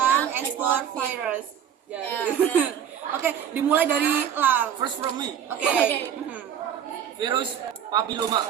ekspor virus. Ya, Oke, dimulai dari Lang. First from me. Oke. Virus papiloma.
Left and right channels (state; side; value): quieter; left; 9.1 dB